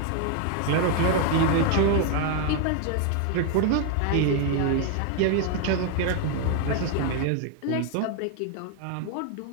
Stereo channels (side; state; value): both; different; correlation 0.01